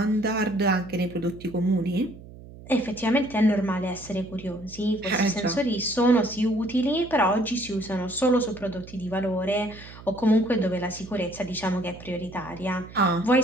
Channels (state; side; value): noise; right; hum, 17 dB below the sound